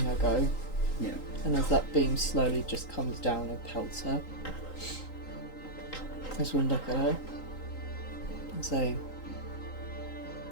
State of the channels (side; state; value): right; late; 3.8 ms